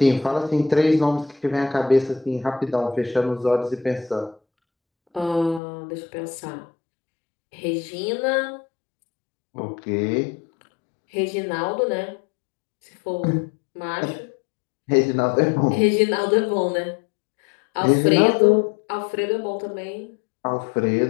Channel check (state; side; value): drops out; right; at 5.6 s